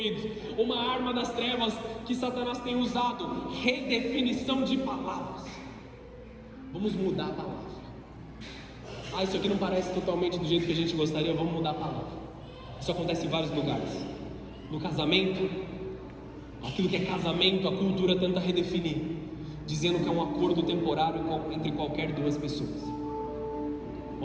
Uma arma das trevas que Satanás tem usado: redefinição de palavras. Vamos mudar a palavra. Isso aqui não parece totalmente do jeito que a gente gostaria, vamos mudar a palavra. Isso acontece em vários lugares. No casamento, aquilo que é casamento, a cultura tenta redefinir, dizendo que é um acordo temporário entre qualquer duas pessoas.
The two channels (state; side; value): identical; both; correlation 1.00